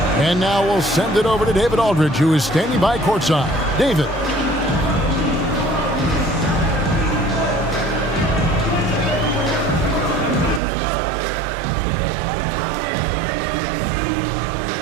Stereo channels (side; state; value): left; drops out; at 10.6 s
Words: And now we'll send it over to David Aldridge, who is standing by courtside. David.